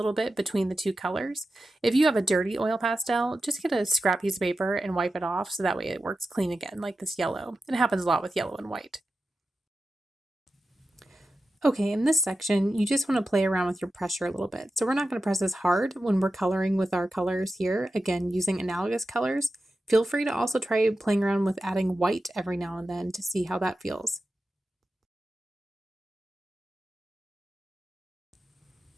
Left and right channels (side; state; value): both; normal; correlation 0.92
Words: bit between the two colors. If you have a dirty oil pastel, just get a scrap piece of paper and wipe it off so that way it works clean again, like this yellow. It happens a lot with yellow and white. Okay, in this section, you just want to play around with your pressure a little bit. So we're not going to press as hard when we're coloring with our colors here, again, using analogous colors. Feel free to also try playing around with adding white every now and then to see how that feels.